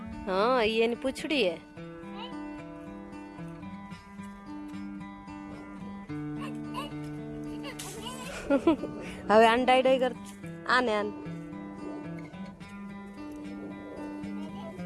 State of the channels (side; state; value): both; identical; correlation 1.00